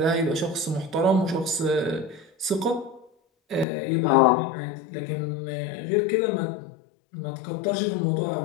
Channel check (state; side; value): drops out; right; at 3.7 s